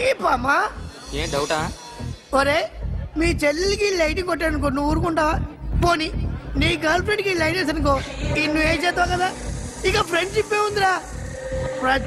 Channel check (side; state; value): both; identical; correlation 1.00